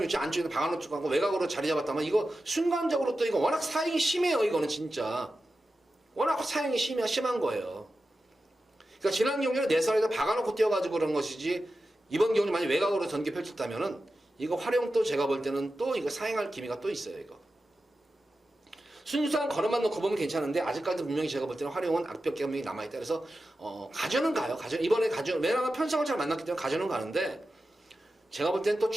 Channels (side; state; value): both; normal; correlation 0.92